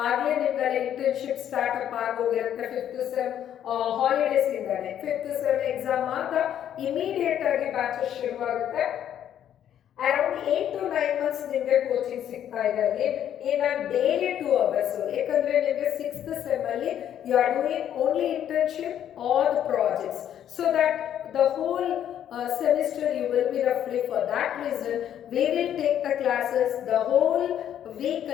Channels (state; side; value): quieter; right; 10.2 dB